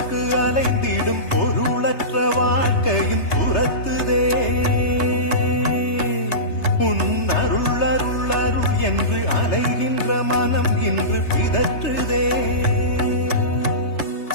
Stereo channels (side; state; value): right; late; 3.3 ms